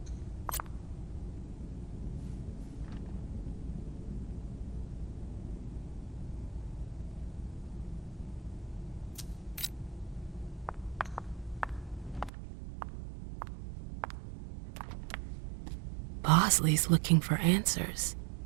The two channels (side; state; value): left; drops out; at 12.3 s